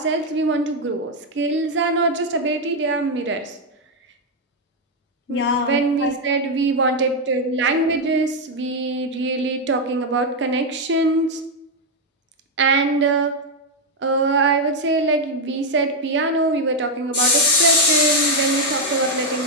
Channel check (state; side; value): normal; both; correlation 0.02